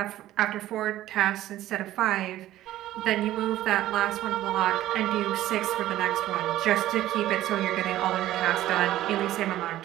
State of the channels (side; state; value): left; quieter; 14.2 dB